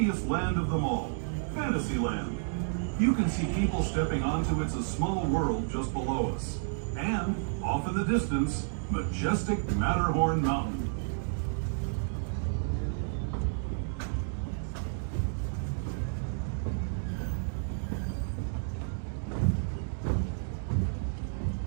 land of them all, Fantasyland. You can see people stepping onto It's a Small World just below us. And, off in the distance, majestic Matterhorn Mountain.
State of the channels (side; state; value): left; silent; digital silence